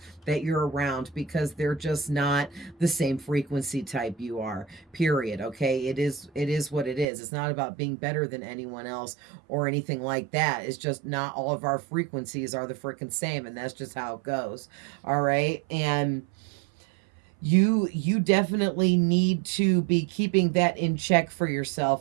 that you're around, because they're just not the same frequency type you are, period. Okay, it is what it is. It's not about being better than anyone else or anything like that. It's just not all of our frequencies are the freaking same, and that's just how it goes. All right, and you definitely need to be keeping that in check for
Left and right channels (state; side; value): drops out; left; at 7.1 s